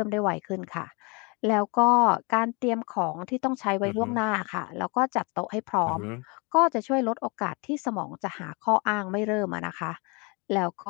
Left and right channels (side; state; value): right; quieter; 30.5 dB